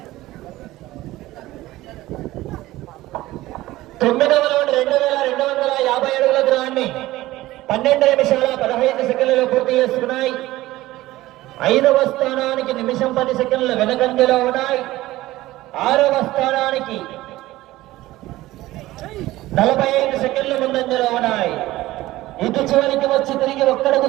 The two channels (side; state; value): left; quieter; 17.1 dB